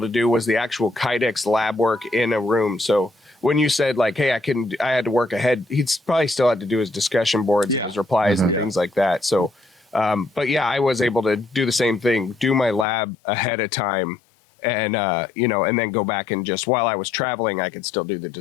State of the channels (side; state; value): right; drops out; at 12.9 s